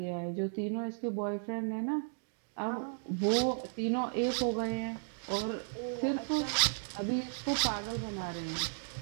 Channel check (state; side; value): silent; left; digital silence